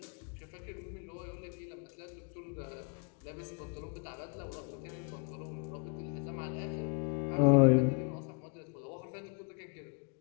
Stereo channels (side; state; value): right; quieter; 35.2 dB